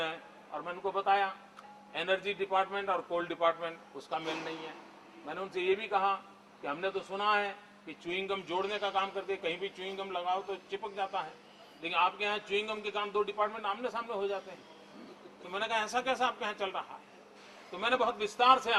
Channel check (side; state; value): both; identical; correlation 1.00